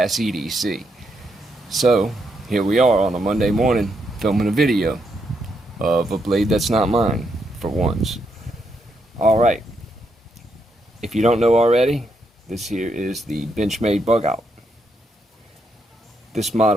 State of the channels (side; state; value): both; normal; correlation 0.79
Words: E.D.C. So here we are on a Monday morning filming a video of a blade that's not mine, for once. Alright, if you don't know already, this here is the Benchmade Bugout. This